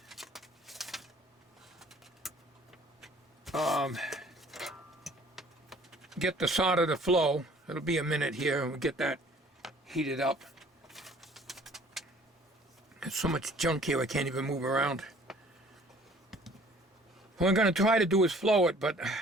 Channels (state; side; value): normal; both; correlation 0.54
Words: get the solder to flow. It'll be a minute here and we'll get that heated up. There's so much junk here I can't even move around. What I'm going to try to do is flow it, but